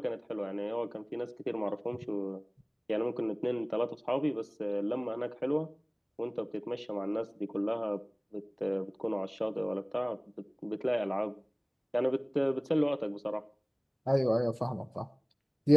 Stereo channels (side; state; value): both; identical; correlation 1.00